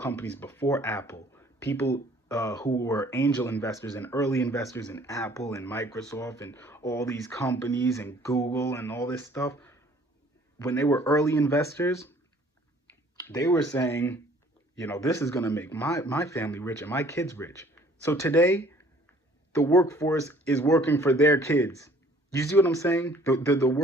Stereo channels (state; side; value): normal; both; correlation 0.56